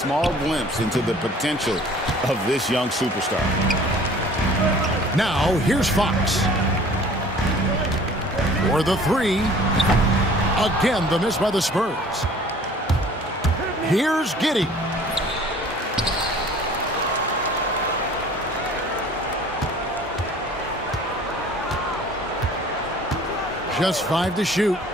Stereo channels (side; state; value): both; normal; correlation 0.50